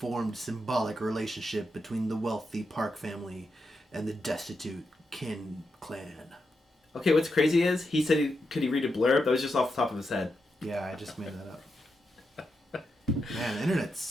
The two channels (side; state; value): both; normal; correlation 0.85